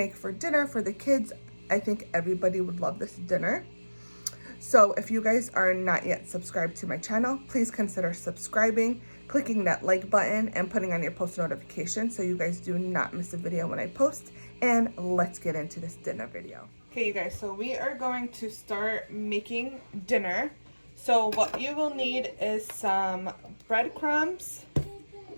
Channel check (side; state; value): both; inverted; correlation -1.00